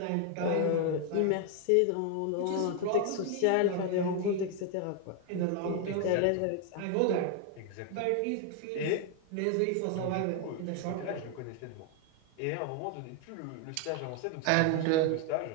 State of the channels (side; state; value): both; different; correlation 0.01